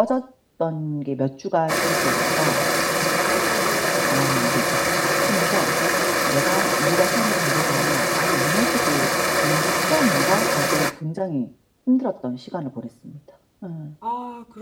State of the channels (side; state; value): both; identical; correlation 1.00